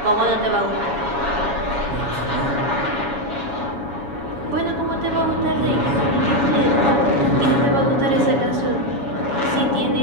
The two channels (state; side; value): late; left; 7.1 ms